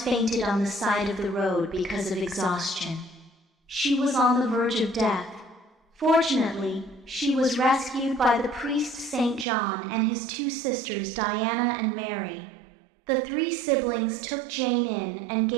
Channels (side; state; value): left; drops out; at 9.5 s